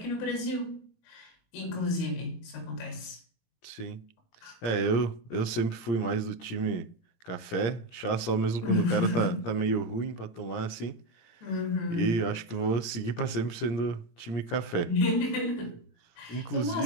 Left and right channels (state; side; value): late; right; 17 ms